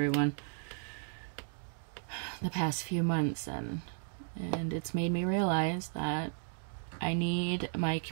the past few months, and it's made me realize that I need my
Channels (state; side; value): silent; left; 55 dB below the other